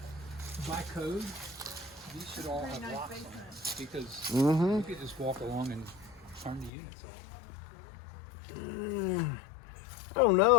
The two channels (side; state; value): right; drops out; at 6.7 s